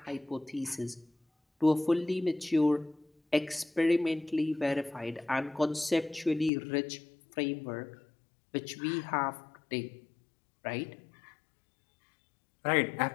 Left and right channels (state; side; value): drops out; right; at 6.5 s